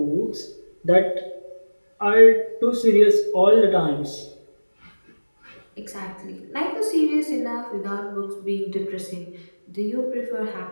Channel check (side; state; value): both; inverted; correlation -1.00